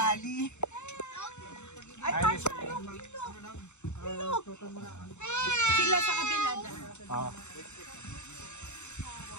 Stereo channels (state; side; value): late; right; 0.83 ms